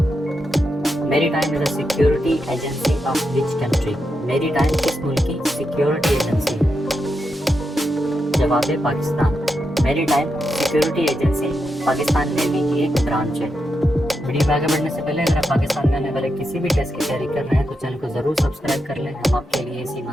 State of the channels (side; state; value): both; normal; correlation 0.85